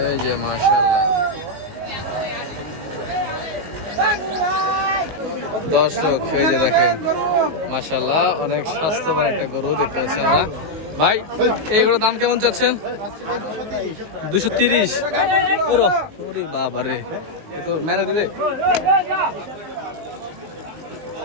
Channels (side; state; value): left; late; 19 ms